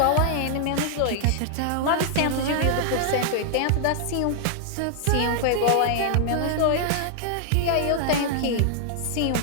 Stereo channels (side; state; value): both; different; correlation -0.01